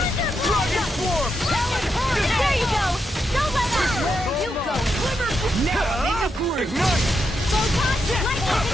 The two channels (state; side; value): normal; both; correlation 0.83